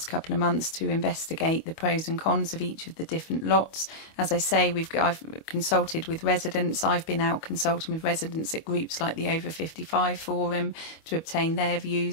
couple of months to investigate the pros and cons of each of the different lots. As I say, I've consulted with residents. I've been out consulting with residents at groups like the Over 55 Forum to obtain their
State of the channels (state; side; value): late; right; 25 ms